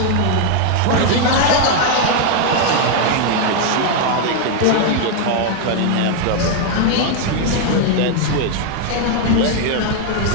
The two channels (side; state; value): both; different; correlation 0.00